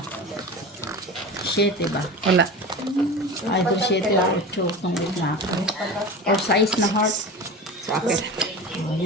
Sheet ba? Wala. Ay, ito sheet lang. 8 kung na ako. Or size na heart. Sa akin.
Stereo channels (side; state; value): both; normal; correlation 0.31